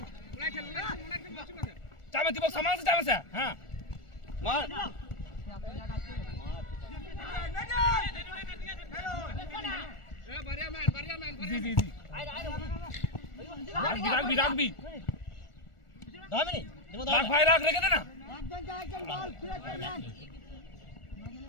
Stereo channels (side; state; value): right; late; 1.4 ms